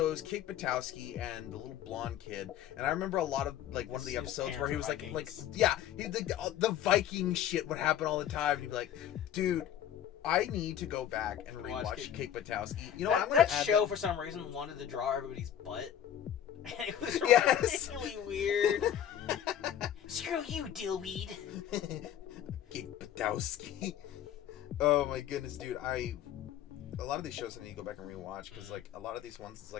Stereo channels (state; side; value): quieter; right; 10.4 dB